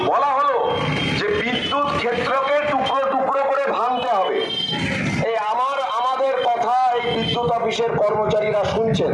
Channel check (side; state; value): both; identical; correlation 1.00